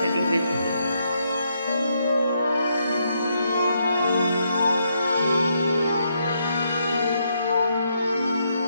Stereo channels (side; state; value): both; inverted; correlation -0.77